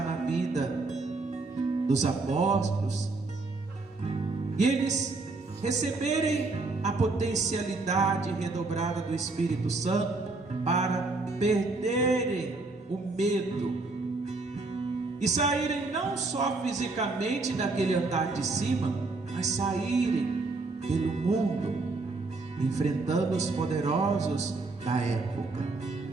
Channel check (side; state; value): left; quieter; 3.5 dB